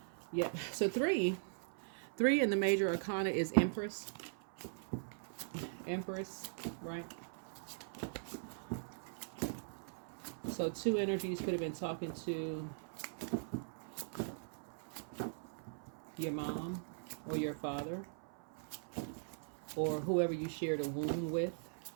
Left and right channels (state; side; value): silent; left; 51 dB below the other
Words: Yep. So 3 in the major arcana is Empress. Empress, right? So two energies could have been talking to your mom or your father or whoever you shared a womb with